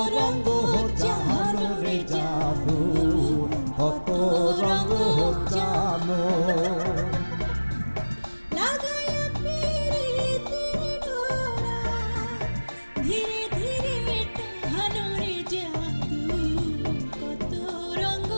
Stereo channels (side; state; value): both; inverted; correlation -1.00